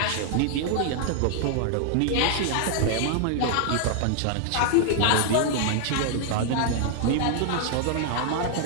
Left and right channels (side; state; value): both; different; correlation 0.00